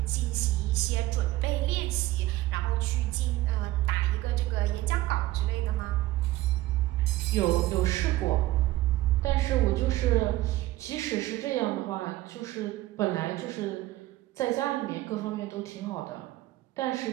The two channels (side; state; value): left; quieter; 16.7 dB